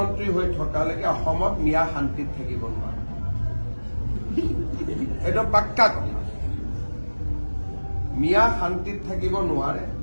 হৈ থকালৈকে অসমত মিয়া শান্তিত থাকিব নোৱাৰে এটা পাক্কা কথা মিয়া শান্তিত থাকিব নোৱাৰে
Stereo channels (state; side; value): inverted; both; correlation -1.00